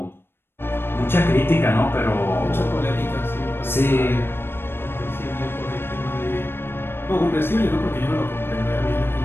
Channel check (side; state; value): right; late; 0.11 ms